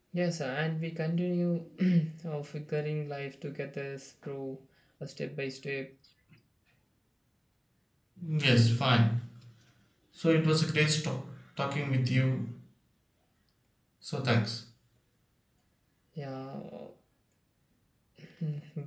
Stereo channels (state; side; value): identical; both; correlation 1.00